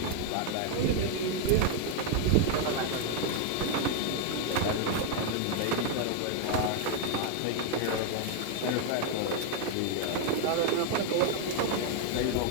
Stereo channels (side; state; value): both; different; correlation 0.00